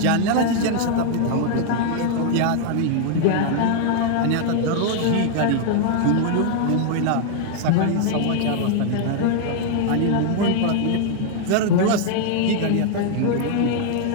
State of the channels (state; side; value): different; both; correlation 0.00